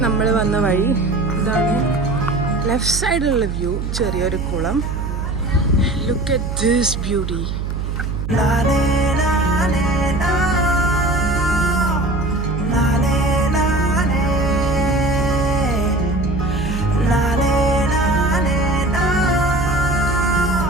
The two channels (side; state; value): right; noise; hum, 4 dB below the sound